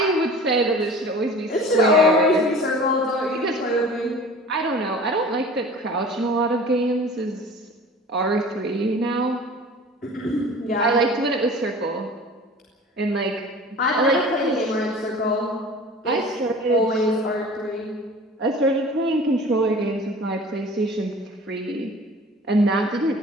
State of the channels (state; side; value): normal; both; correlation 0.42